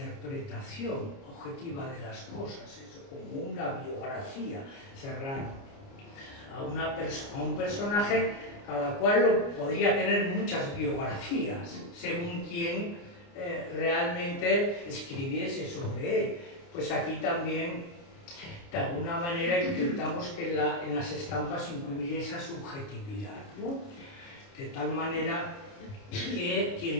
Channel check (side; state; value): right; late; 29 ms